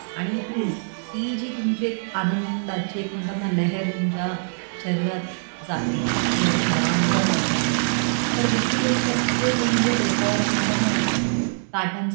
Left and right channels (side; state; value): left; silent; digital silence